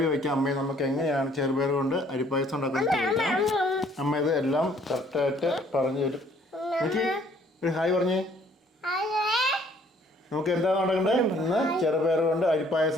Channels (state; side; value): normal; both; correlation 0.60